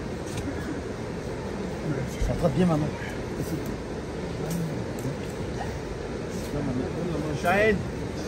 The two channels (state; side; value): identical; both; correlation 1.00